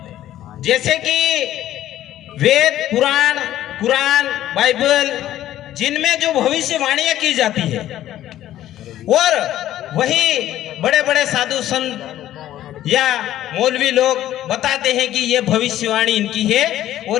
जैसे कि वेद पुराण कुरान बाइबल जिनमें जो भविष्यवाणियां की जाती है, और वही बड़े बड़े साधु संत या मौलवी लोग बताते हैं कि ये भविष्यवाणी इनकी है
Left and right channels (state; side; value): quieter; right; 13.0 dB